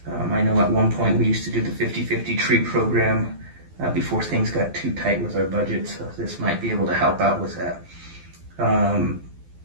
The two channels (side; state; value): left; late; 12 ms